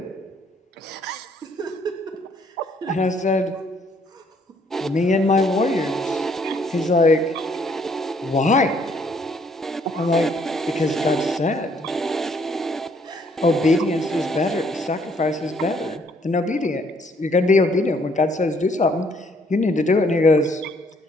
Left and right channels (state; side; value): normal; both; correlation 0.66